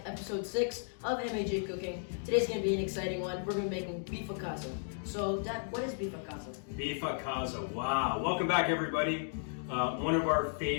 episode 6 of MaJ Cooking. Today's going to be an exciting one. We're going to be making beef a casa. So, Dad, what is beef a casa? Beef a casa, wow. Welcome back everybody. One of our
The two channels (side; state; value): right; silent; digital silence